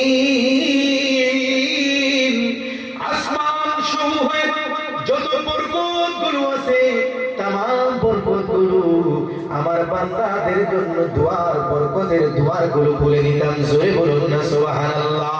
আসমান সমূহে যত বরকতগুলো আছে तमाम বরকতগুলো আমার বান্দাদের জন্য দুয়ার, বরকতের দুয়ারগুলো খুলে দিতাম। জোরে বলুন না সুবহানাল্লাহ।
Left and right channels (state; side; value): identical; both; correlation 1.00